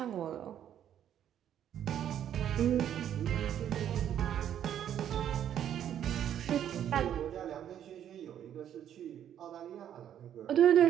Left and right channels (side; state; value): left; quieter; 10.1 dB